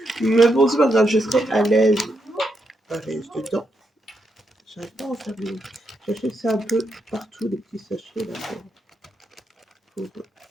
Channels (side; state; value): both; normal; correlation 0.81